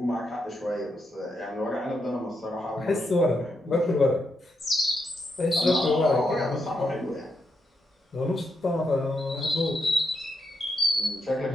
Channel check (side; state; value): both; normal; correlation 0.82